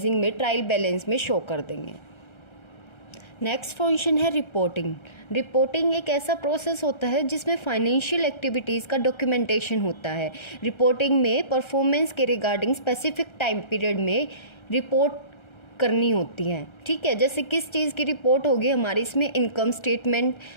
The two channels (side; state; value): right; late; 1.3 ms